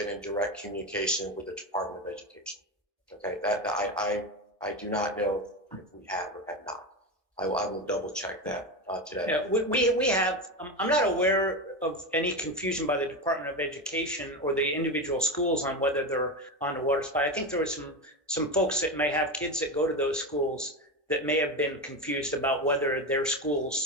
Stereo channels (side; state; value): both; normal; correlation 0.18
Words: in direct communication with the Department of Education. Okay, that I do not know if we have or have not. I will double check that today. Yeah, we have, I'm not aware of any confusion by the Department of Education or the individual schools on whether they're on the water supply. I think there were some folks that may have kids that go to those schools that may have been confused about whether their